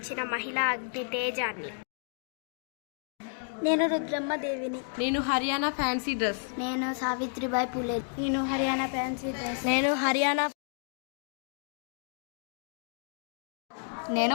మహిళా అగ్ని తేజాన్ని. నేను రుద్రమ్మ దేవిని. నేను హర్యానా ఫ్యాన్సీ డ్రెస్. నేను సావిత్రిబాయి పులే. నేను హర్యానా ఫ్యాన్సీ డ్రెస్. నేను హర్యానా.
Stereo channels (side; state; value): right; silent; 57 dB below the other